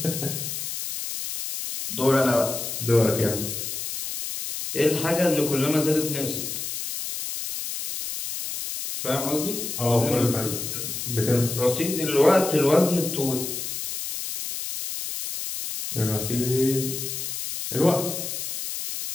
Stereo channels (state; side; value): noise; left; hiss, 5 dB below the sound